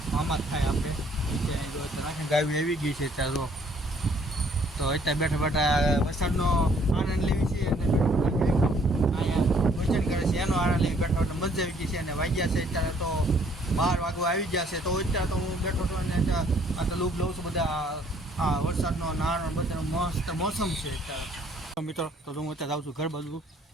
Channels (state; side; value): normal; both; correlation 0.62